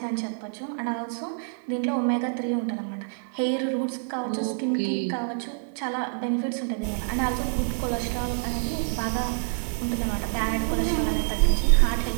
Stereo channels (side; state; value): left; silent; digital silence